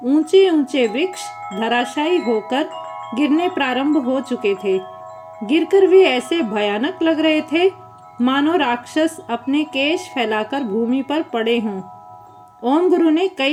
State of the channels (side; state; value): both; identical; correlation 1.00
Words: ऊंचे ऊंचे वृक्ष धराशायी होकर गिरने प्रारंभ हो चुके थे। गिरकर वे ऐसे भयानक लग रहे थे मानो राक्षस अपने केश फैलाकर भूमि पर पड़े हों। ओम गुरु ने